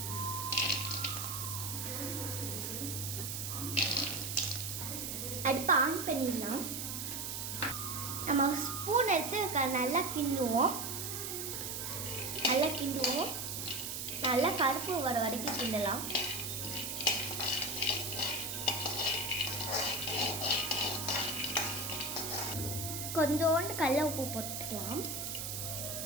அடுப்பு ஆன் பண்ணிடலாம். நம்ம ஸ்பூன் எடுத்து நல்லா கிண்டுவோம். நல்லா கருப்பு வர வரைக்கும் கிண்டலாம். கொஞ்சோண்டு கடலை உப்பு போட்டுக்கலாம்.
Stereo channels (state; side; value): noise; right; hiss, 4 dB below the sound